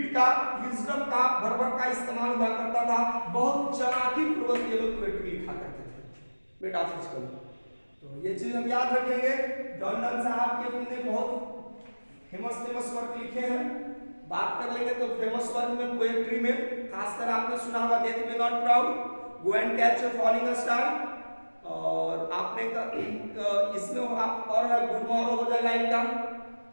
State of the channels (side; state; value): both; inverted; correlation -1.00